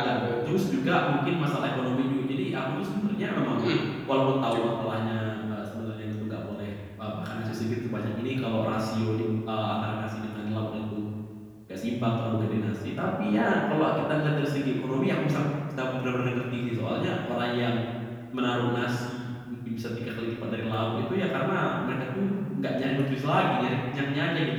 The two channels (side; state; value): both; identical; correlation 1.00